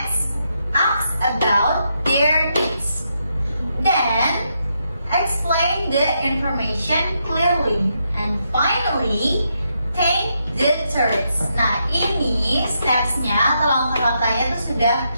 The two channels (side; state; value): both; inverted; correlation -0.80